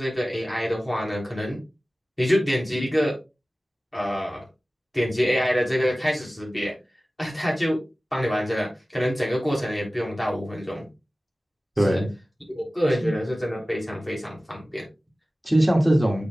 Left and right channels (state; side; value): normal; both; correlation 0.97